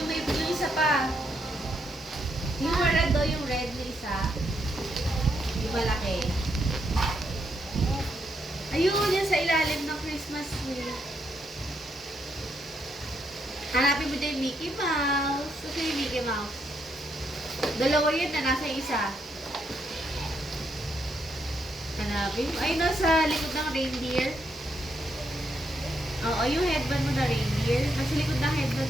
may yung isa pa. Yung red do, yung red na isa. Yung malaki. Ayun, yan sa ilalim ng Christmas tree. Hanapin mo dyan yung Mickey Mouse. Ito yung Mickey Mouse. Dalawa yun na nasa isa. Hanapin mo. Ay, nasa likod ng reindeer. Oo, yung headband mo na reindeer. Nasa likod ng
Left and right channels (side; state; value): both; normal; correlation 0.77